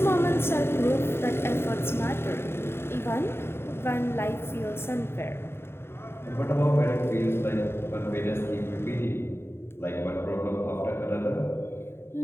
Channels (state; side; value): late; right; 0.12 ms